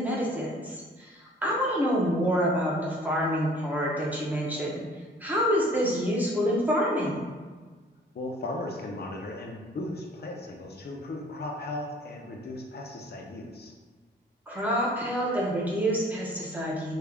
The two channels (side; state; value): both; normal; correlation 0.52